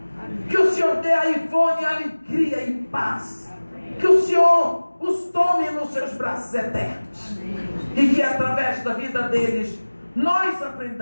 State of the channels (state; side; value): inverted; both; correlation -1.00